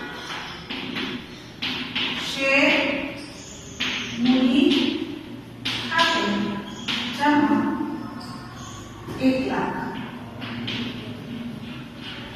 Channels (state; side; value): identical; both; correlation 1.00